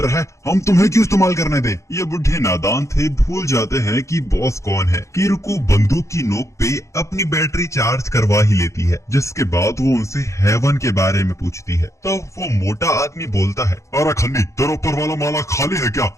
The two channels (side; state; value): right; late; 0.15 ms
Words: है, हम तुम्हें क्यों इस्तेमाल करने दें। ये बुढ़े नादान थे, भूल जाते हैं कि बॉस कौन है। किरुको बंदूक की नोक पे अपनी बैटरी चार्ज करवा ही लेती है, जिसके बाद वो उनसे हेवन के बारे में पूछती है। तो वो मोटा आदमी बोलता है, अरे खन्नी तेरा ऊपर वाला माला खाली है क्या?